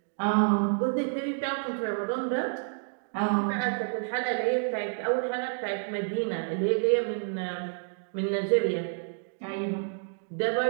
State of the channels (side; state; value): left; silent; digital silence